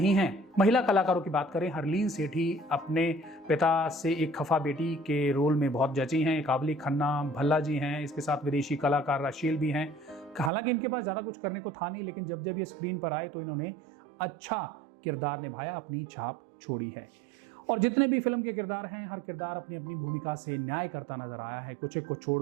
है। महिला कलाकारों की बात करें, हरलीन सेठी अपने पिता से एक खफा बेटी के रोल में बहुत जची हैं। काबली खन्ना, भल्ला जी हैं, इसके साथ विदेशी कलाकार राशील भी हैं। हालांकि इनके पास ज़्यादा कुछ करने को था नहीं, लेकिन जब ये स्क्रीन पर आए तो इन्होंने अच्छा किरदार निभाया, अपनी छाप छोड़ी है। और जितने भी फिल्म के किरदार हैं, हर किरदार अपनी अपनी भूमिका से न्याय करता नजर आया है। कुछ एक को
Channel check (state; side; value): drops out; left; at 10.5 s